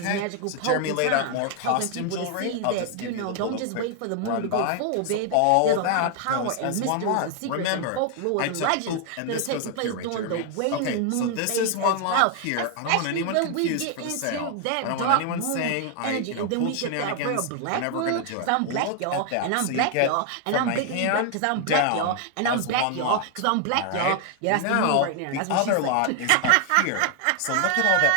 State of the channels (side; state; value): both; different; correlation 0.00